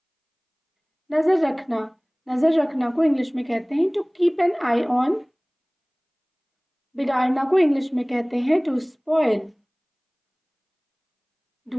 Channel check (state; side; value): identical; both; correlation 1.00